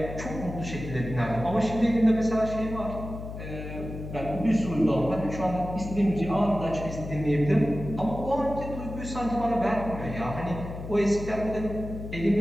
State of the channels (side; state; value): left; noise; hum, 9 dB below the sound